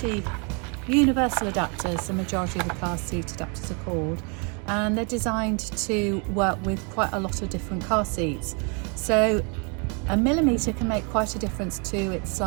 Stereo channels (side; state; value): left; quieter; 35.4 dB